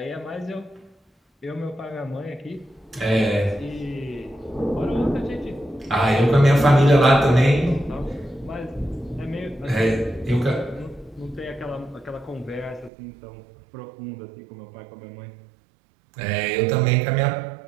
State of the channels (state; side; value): drops out; left; at 12.9 s